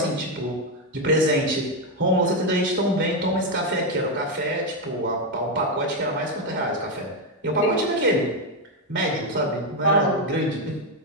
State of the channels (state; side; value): normal; both; correlation 0.06